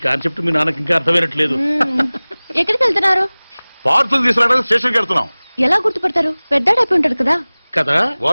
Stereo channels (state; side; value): inverted; both; correlation -1.00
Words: కాన్సెప్ట్ మీ నాన్నకి ఇంకా అర్థమైనట్లేదు. ఎక్కడికి వెళ్తున్నారు? పార్సల్ తీసుకురావడానికి స్టేషన్కి వెళ్తున్నాం. ఎలా గుర్తుపడతారు? పెద్దాడైపోయి ఉంటాడు కదా. కదా